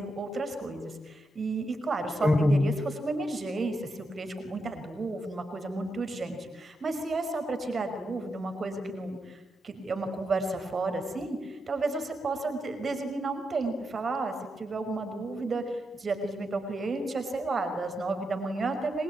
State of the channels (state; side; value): normal; both; correlation 0.84